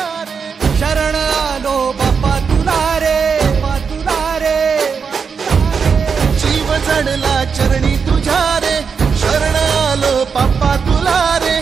शरण आलो बाप्पा तुला रे जीव जडला चरणी तुझ्या रे शरण आलो बाप्पा तुला रे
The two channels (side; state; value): left; quieter; 6.0 dB